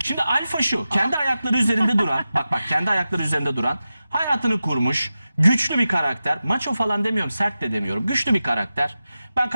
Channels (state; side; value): inverted; both; correlation -0.93